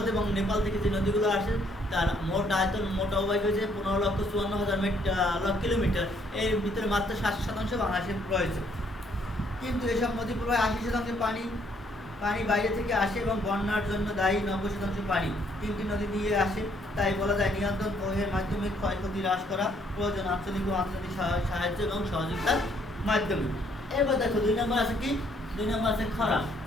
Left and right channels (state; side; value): normal; both; correlation 0.67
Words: এবং নেপাল থেকে যে নদীগুলো আসে তার মোট আয়তন, মোট অববাহিকা হয়েছে 15,54,000 কিলোমিটার। এর ভিতরে মাত্র 60% বাংলাদেশে রয়েছে। কিন্তু এসব নদী প্রবাহে 80% পানি বাইরে থেকে আসে এবং বন্যার জন্য দায়ী 90% পানি 3টি নদী দিয়ে আসে। তাই বলা যায় নিয়ন্ত্রণ ও এর মাধ্যমে ক্ষয়ক্ষতি হ্রাস করা প্রয়োজন আঞ্চলিক ও আন্তর্জাতিক সাহায্য এবং সহযোগিতার মাধ্যমে। এবার দেখো 2 নম্বর আছে কি? 2 নম্বর আছে খরা।